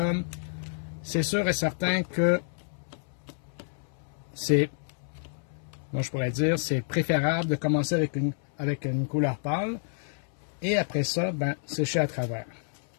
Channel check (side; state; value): right; silent; 59 dB below the other